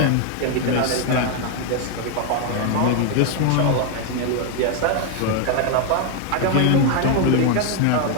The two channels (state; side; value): different; both; correlation 0.01